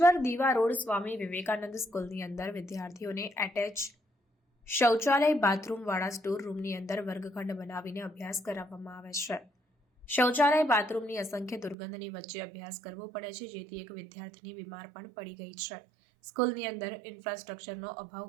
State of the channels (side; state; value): left; drops out; at 11.8 s